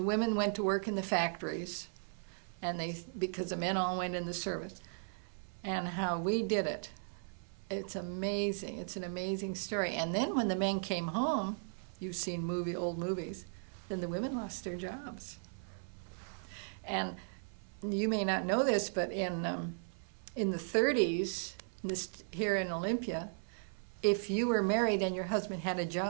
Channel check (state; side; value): silent; left; 53 dB below the other